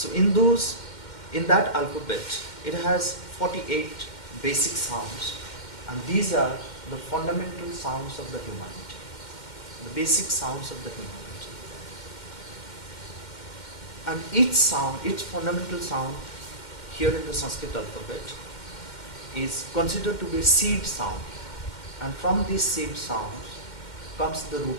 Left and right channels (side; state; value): right; late; 2.1 ms